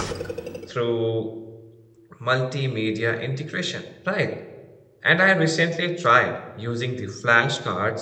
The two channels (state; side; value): identical; both; correlation 1.00